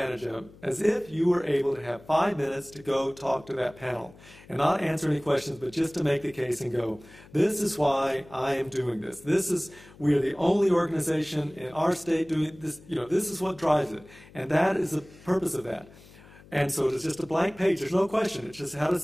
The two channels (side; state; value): left; noise; hum, 23 dB below the sound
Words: of, as if you were able to have 5 minutes to go talk to that panel and not answer any questions, but just to make the case and go, this is why I am doing this. We are the only organization in our state doing this, you know, this is what drives it. And that is the purpose of that. And so it's just a blank page. There's no question. It's just how does